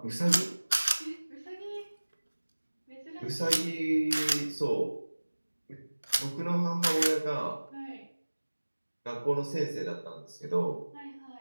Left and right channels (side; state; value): both; inverted; correlation -1.00